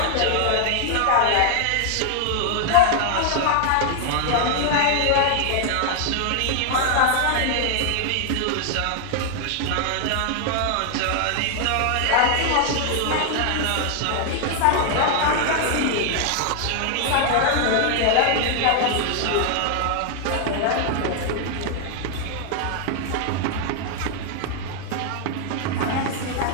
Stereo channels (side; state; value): both; different; correlation 0.00